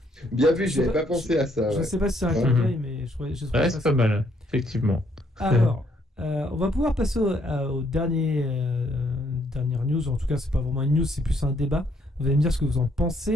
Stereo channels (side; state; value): both; normal; correlation 0.70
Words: Bien vu, Je sais j'avais pas- pas pensé à ça. Je Ouais. sais pas si c'est un Mhm. clin d'œil, mais je trouvais Ouais, ça c'est pas mal, effectivement. Alors, on va pouvoir passer au dernière news. En tout cas, c'est pas vraiment une news, c'est plus un débat. Vous allez me dire ce que vous en